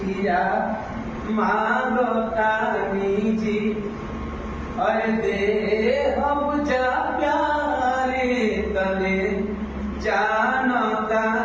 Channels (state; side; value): identical; both; correlation 1.00